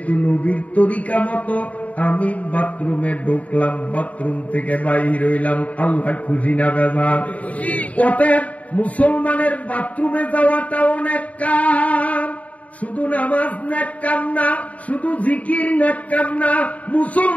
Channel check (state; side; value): late; right; 0.068 ms